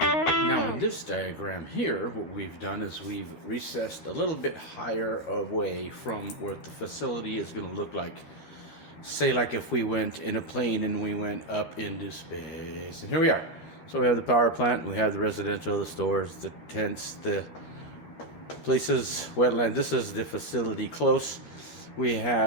Now in this diagram here, what we've done is we've recessed a little bit higher away from what the facility is going to look like. Say like if we went in a plane and we went up into space, and here we are. So we have the power plant, we have the residential, the stores, the tents, the places, wetland. This is the facility close. We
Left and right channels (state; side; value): late; right; 13 ms